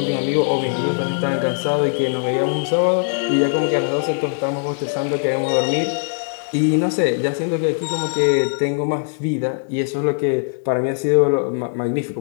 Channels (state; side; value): silent; right; digital silence